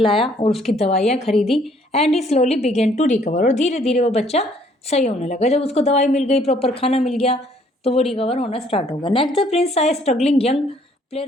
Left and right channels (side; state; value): both; normal; correlation 0.63